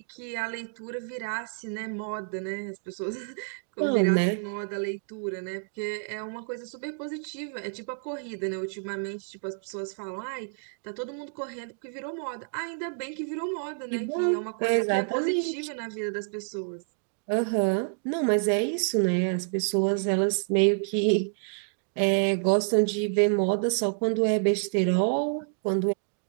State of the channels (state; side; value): silent; left; digital silence